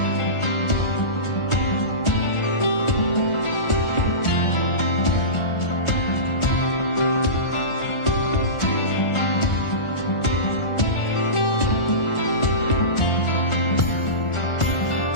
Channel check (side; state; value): right; late; 1.4 ms